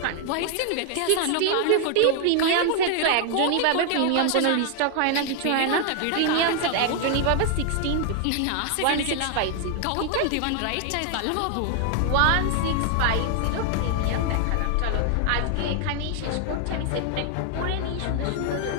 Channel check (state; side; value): different; both; correlation 0.00